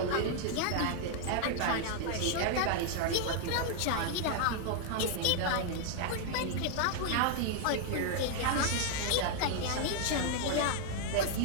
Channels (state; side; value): different; both; correlation 0.00